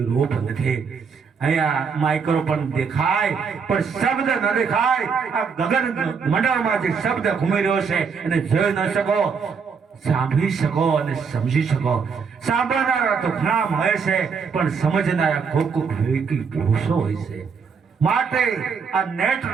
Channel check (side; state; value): left; quieter; 5.8 dB